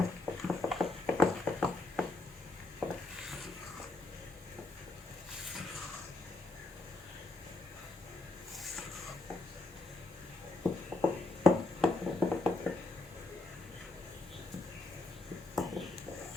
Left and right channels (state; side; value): quieter; right; 3.1 dB